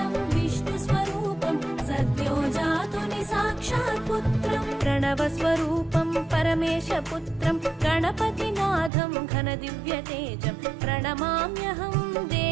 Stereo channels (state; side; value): drops out; left; at 8.9 s